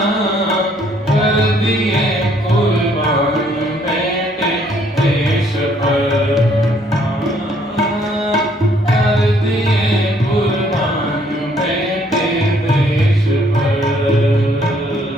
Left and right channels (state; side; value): normal; both; correlation 0.65